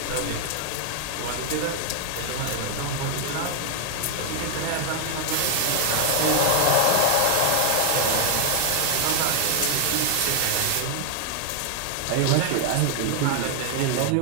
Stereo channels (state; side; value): different; both; correlation 0.00